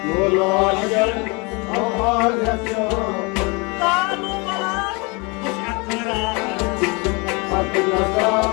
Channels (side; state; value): right; quieter; 29.2 dB